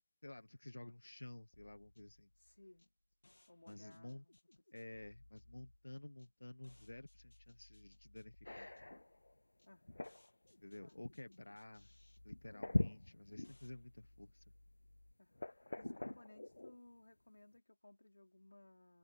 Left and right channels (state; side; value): inverted; both; correlation -1.00